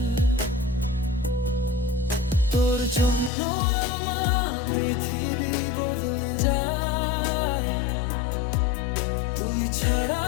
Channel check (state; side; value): drops out; right; at 3.3 s